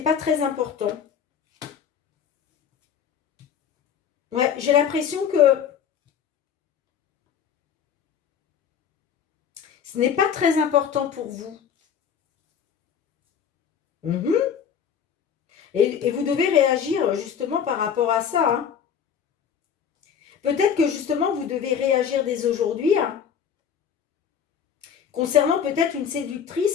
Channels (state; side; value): quieter; right; 7.8 dB